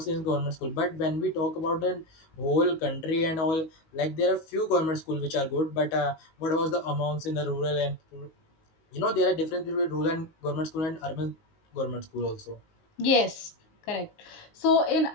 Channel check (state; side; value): late; right; 19 ms